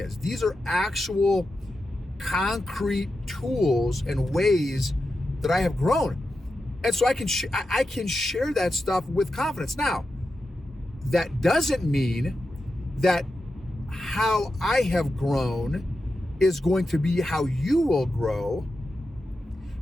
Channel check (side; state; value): both; normal; correlation 0.90